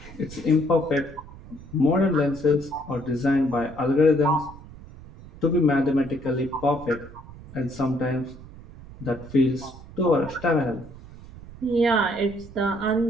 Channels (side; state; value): right; noise; rumble, 17 dB below the sound